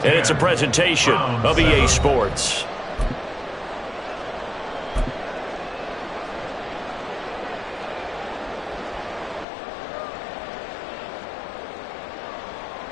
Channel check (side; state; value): right; drops out; at 9.5 s